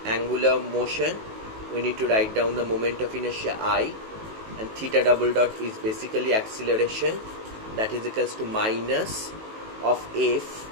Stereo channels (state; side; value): late; left; 18 ms